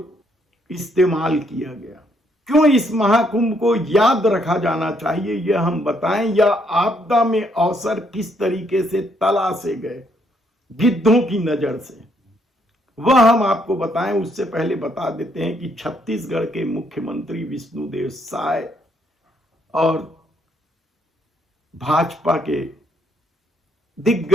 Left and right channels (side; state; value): both; normal; correlation 0.71